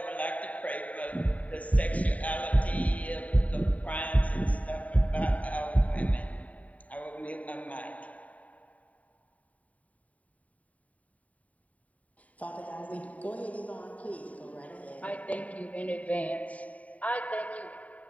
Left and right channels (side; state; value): right; late; 0.069 ms